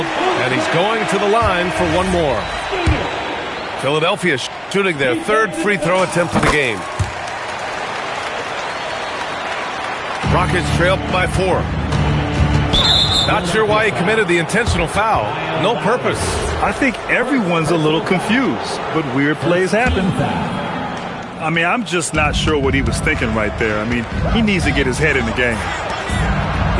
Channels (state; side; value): identical; both; correlation 1.00